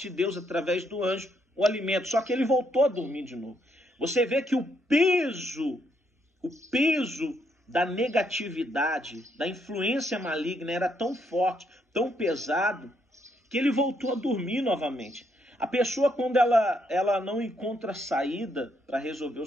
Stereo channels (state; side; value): normal; both; correlation 0.75